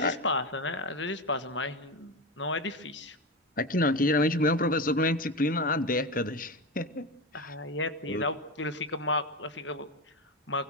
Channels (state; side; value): normal; both; correlation 0.18